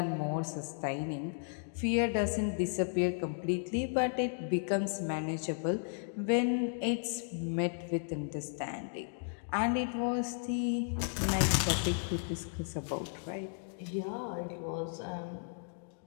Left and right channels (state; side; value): silent; right; digital silence